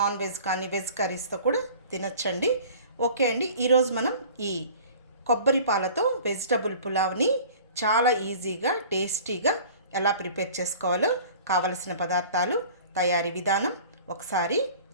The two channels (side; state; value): both; inverted; correlation -0.45